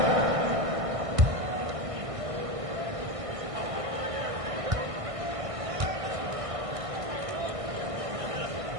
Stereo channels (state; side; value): late; left; 1.6 ms